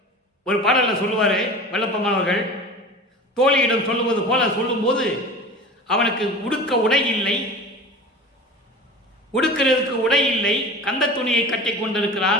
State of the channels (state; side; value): normal; both; correlation 0.35